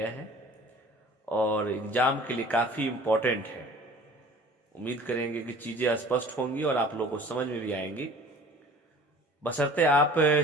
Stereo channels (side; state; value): both; normal; correlation 0.46